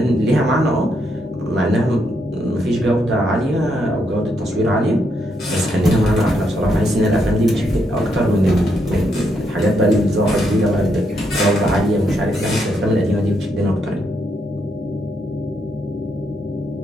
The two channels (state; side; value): normal; both; correlation 0.78